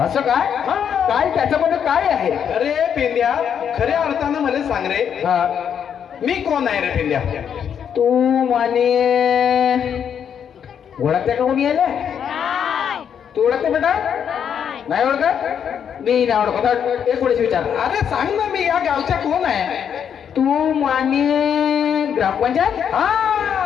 असं काय? हा. काय त्याच्यामध्ये काय आहे? अरे पेंद्या, खऱ्या अर्थानं मला सांग रे, हा मी कोण आहे रे पेंद्या? तू माने ओळखते का कोणी यायला? तू ओळखते बेटा? नाही ओळखत? मी नाही ओळखत. एक वेळेस विचार. अरे सांग ना, मी या गावच्या कोण आहे? तू माने ग्रामपंचायत? हा,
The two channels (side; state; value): right; quieter; 8.1 dB